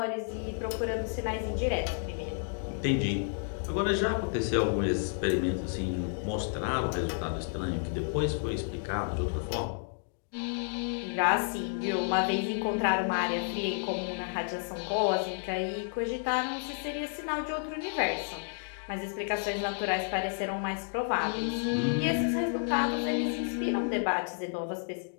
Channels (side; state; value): right; silent; digital silence